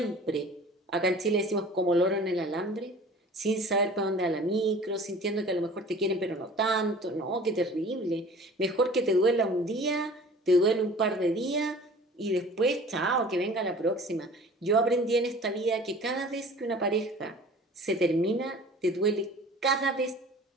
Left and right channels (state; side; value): normal; both; correlation 0.45